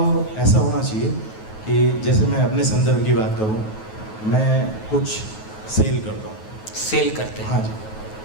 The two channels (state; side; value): late; right; 9.3 ms